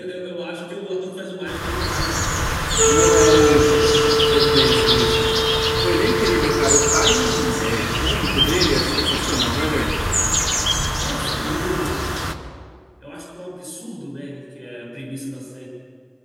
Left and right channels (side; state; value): both; identical; correlation 1.00